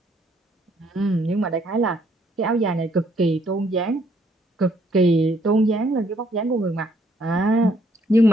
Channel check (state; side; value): normal; both; correlation 0.68